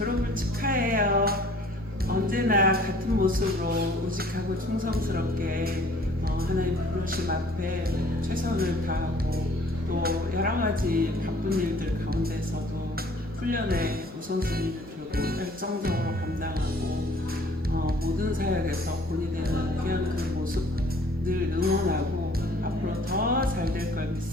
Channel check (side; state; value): both; normal; correlation 0.54